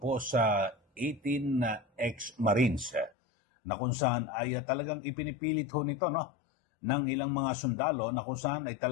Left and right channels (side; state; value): right; drops out; at 3.1 s